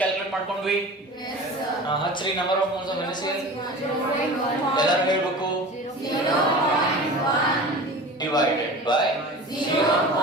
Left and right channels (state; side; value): normal; both; correlation 0.36